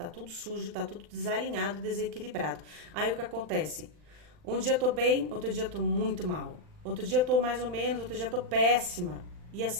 tudo sujo, tá tudo desalinhado, desequilibrado. Aí o que acontece? Um dia eu tô bem, outro dia eu tô muito mal. Outro dia eu tô mais ou menos, outro dia eu tô péssima. E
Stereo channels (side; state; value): left; late; 39 ms